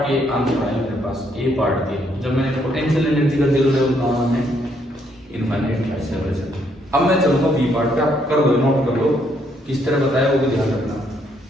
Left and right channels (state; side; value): normal; both; correlation 0.71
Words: के आंसर आए मेरे पास, ए पार्ट के, जब मैंने पोटेंशियल एनर्जी का जीरो लेवल कहा है इनफाइनाइट सेपरेशन। अब मैं चलूंगा बी पार्ट पे, आप कर लो, नोट कर लो किस तरह बताया वो भी ध्यान रखना।